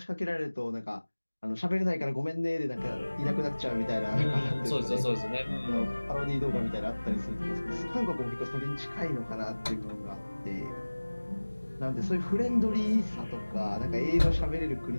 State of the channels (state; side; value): inverted; both; correlation -1.00